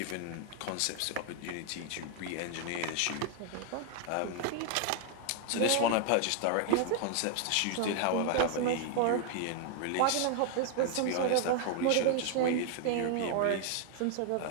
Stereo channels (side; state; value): both; different; correlation 0.00